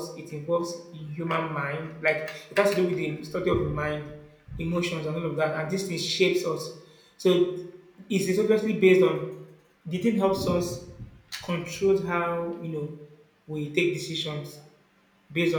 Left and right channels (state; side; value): identical; both; correlation 1.00